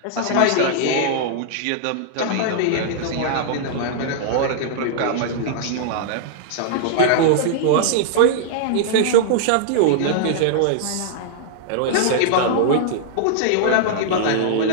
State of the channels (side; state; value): both; different; correlation -0.01